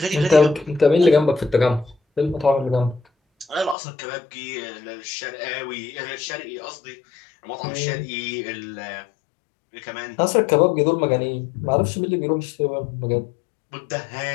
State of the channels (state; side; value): drops out; right; at 3.8 s